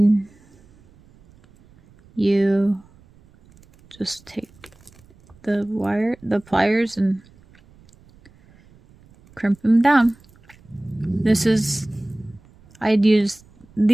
you just take the pliers and crimp them down. These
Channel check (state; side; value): noise; right; rumble, 28 dB below the sound